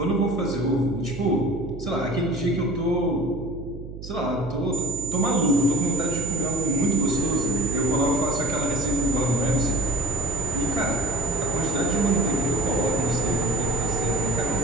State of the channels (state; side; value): noise; right; hum, 12 dB below the sound